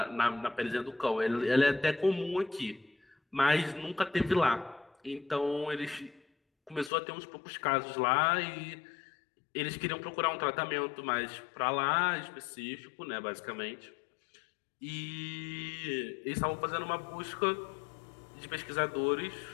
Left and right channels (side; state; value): right; drops out; at 6.9 s